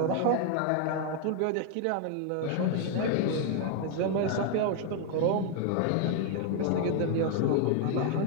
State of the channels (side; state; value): both; different; correlation 0.00